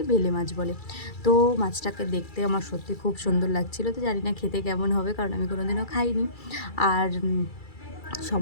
বেলে মাছ বলে। তো মাছটাকে দেখতে আমার সত্যি খুব সুন্দর লাগছিলো। তো জানি না খেতে কেমন হবে, কারণ আমি কোনোদিনও খাইনি। আর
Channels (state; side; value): late; right; 2.3 ms